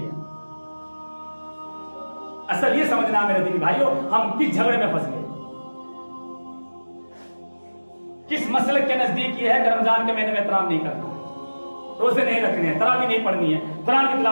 असल ये समझना मेरे दीनी भाइयों, हम किस झगड़े में फंस गए, किस मसले के नजदीक ये है कि रमजान के महीने में एहतराम नहीं करना, रोजे नहीं रखने हैं, तरावी नहीं पढ़नी है, कुरान की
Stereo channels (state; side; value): inverted; both; correlation -1.00